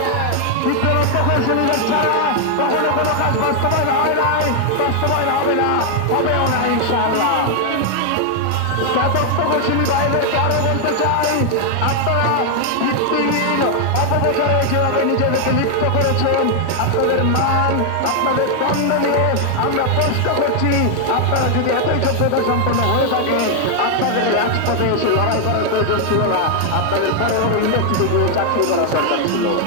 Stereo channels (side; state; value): both; different; correlation 0.00